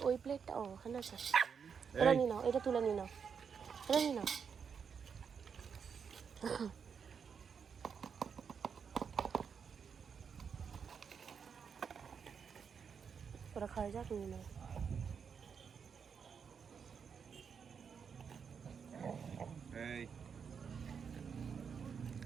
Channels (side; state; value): left; quieter; 6.6 dB